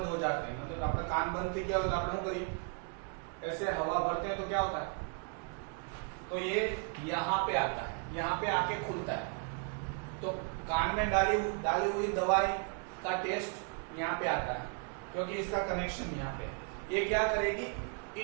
हो जाते हैं, मतलब आपका कान बंद थे, क्या होता है, आप लोग ऐसे हवा भरते हैं तो क्या होता है, तो ये यहाँ पे आता है, यहाँ पे आके खुलता है। तो कान में डाली हुई दवाई का टेस्ट यहाँ पे आता है, क्योंकि इसका कनेक्शन यहाँ पे। ये क्या करेगी,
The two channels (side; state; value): left; quieter; 38.4 dB